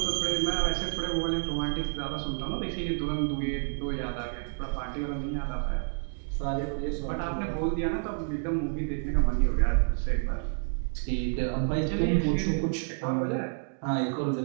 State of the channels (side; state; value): left; silent; digital silence